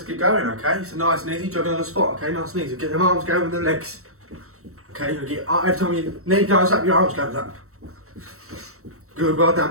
get going, okay? So nice and easy, jogging on the spot, okay? Nice and easy. Get them arms going with the legs. Okay, you get, every time your knee goes up, your arms goes up. Good, well done,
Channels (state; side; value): late; left; 0.63 ms